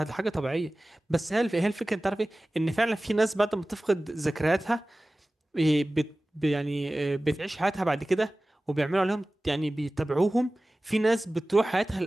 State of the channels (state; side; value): normal; both; correlation 0.97